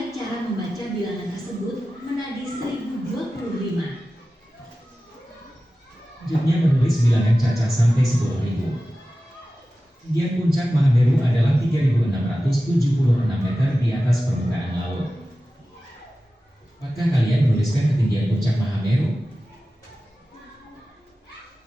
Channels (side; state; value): both; normal; correlation 0.95